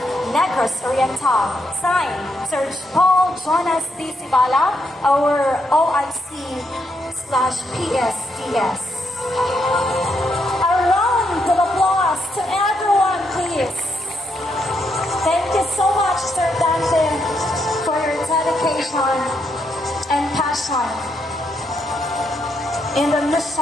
Negros Oriental. Signed, Sir Paul Jonas D. Sibala, our OIC/PSDS. A round of applause to everyone, please. Thank you so much, Sir Dante, for your dedication and passion in the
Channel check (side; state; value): both; normal; correlation 0.79